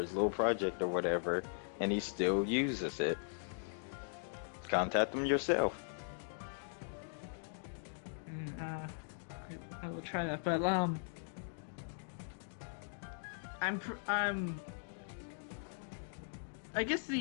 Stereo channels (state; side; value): silent; right; digital silence